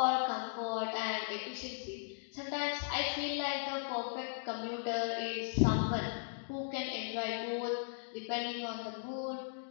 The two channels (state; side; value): silent; right; digital silence